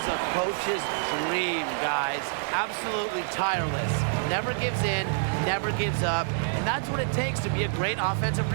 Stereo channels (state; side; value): silent; left; digital silence